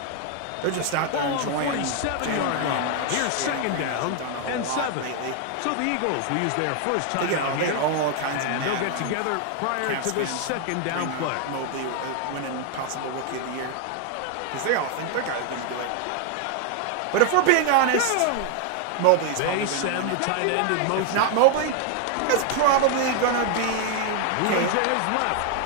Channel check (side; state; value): both; different; correlation 0.00